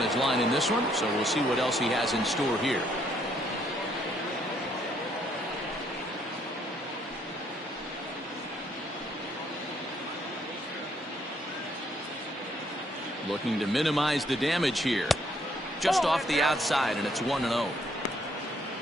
his line in this one, so we'll see what else he has in store here. Looking to minimize the damage here. Just off the outside, and it's 1-0.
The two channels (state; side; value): normal; both; correlation 0.69